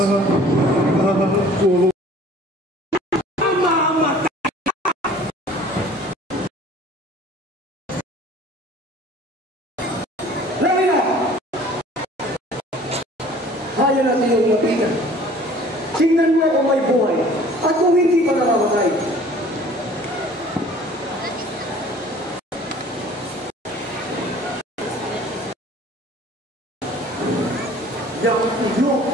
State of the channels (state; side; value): normal; both; correlation 0.50